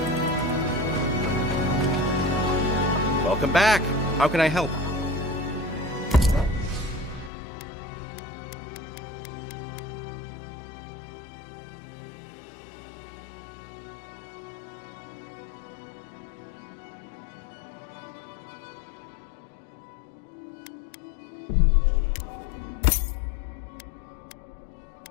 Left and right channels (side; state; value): right; drops out; at 7.3 s